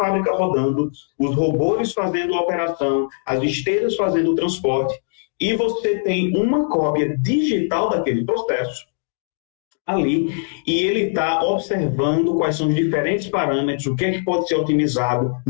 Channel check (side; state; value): right; silent; digital silence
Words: rodando, os robôs fazendo a operação, as esteiras fazendo o transporte, e você tem uma cópia digital daquele processo ali, e ele está observando quais são os diferentes parâmetros, o que é que pode ser otimizado